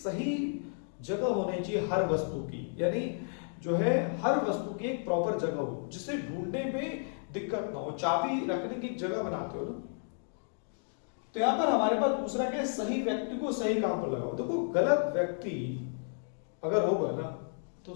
जगह होनी चाहिए हर वस्तु की, यानी जो है हर वस्तु की एक प्रॉपर जगह हो जिसे ढूंढने में दिक्कत ना हो। चाबी रखने की एक जगह बनाते हो ना। तो यहां पर हमारे पास दूसरा क्या है? सही व्यक्ति को सही काम पर लगाओ। देखो गलत व्यक्ति अगर होगा ना तो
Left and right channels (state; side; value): silent; right; digital silence